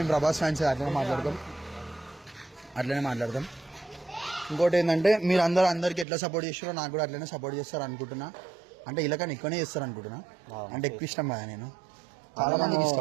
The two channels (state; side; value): drops out; left; at 6.1 s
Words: ప్రభాస్ ఫ్యాన్స్ అట్లనే మాట్లాడతాం. ఇంకోటి ఏంటంటే మీరు అందరికి ఎట్లా సపోర్ట్ చేస్తారో నాకు కూడా అట్లనే సపోర్ట్ చేస్తారు అనుకుంటున్నా. అంటే ఇలా కానీ ఎక్కువనే చేస్తారు అనుకుంటున్నా. అంటే ఎక్కువ ఇష్టం కదా, నేను చాలా మందికి